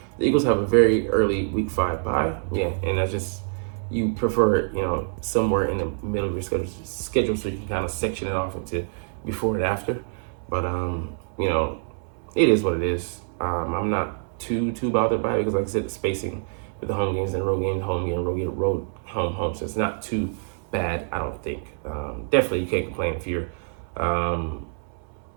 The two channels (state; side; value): silent; left; 61 dB below the other